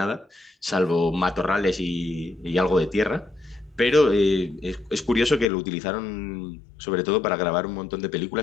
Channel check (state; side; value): drops out; right; at 5.5 s